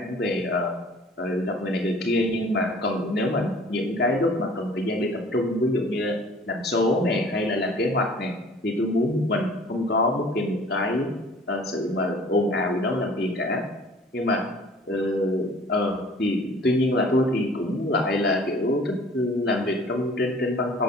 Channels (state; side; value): normal; both; correlation 0.50